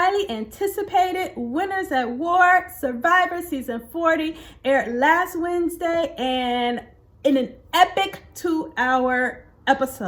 anticipated Winners at War Survivor Season 40 aired last Wednesday and in an epic 2-hour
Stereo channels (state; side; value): identical; both; correlation 1.00